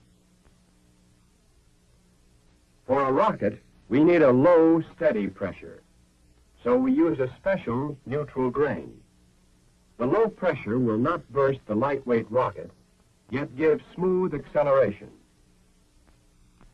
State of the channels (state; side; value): identical; both; correlation 1.00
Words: For a rocket, we need a low, steady pressure, so we use a special neutral grain. The low pressure will not burst the lightweight rocket, yet give smooth acceleration.